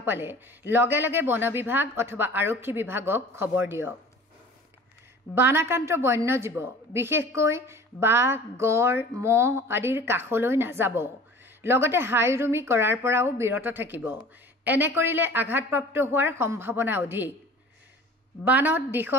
পালে লগে লগে বন বিভাগ অথবা আৰক্ষী বিভাগক খবৰ দিয়ক। বানাক্ৰান্ত বন্যজীৱ, বিশেষকৈ বাঘ, গড়, মহ আদিৰ কাষলৈ নাযাব। লগতে হাইৰুমি কৰাৰ পৰাও বিৰত থাকিব। এনে কৰিলে আঘাতপ্ৰাপ্ত হোৱাৰ সম্ভাৱনা অধিক। বানত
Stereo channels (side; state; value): both; normal; correlation 0.44